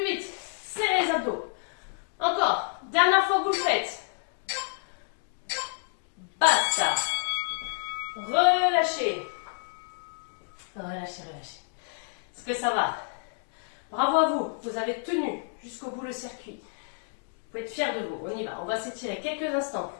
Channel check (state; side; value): silent; right; digital silence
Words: vite. Serrez les abdos. Encore. Dernière fois que vous le faites. Basta. Relâchez. Relâchez, relâchez. Est-ce que ça va? Bravo à vous. Vous avez tenu jusqu'au bout le circuit. Vous pouvez être fiers de vous. On y va. On va s'étirer quelques instants